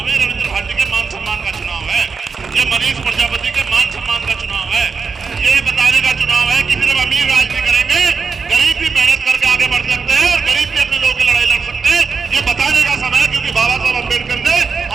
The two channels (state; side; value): quieter; left; 5.3 dB